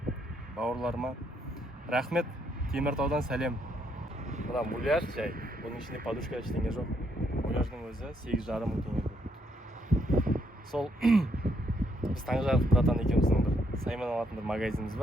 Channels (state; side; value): normal; both; correlation 0.74